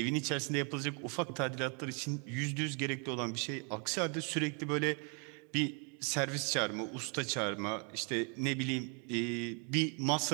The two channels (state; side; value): quieter; left; 36.0 dB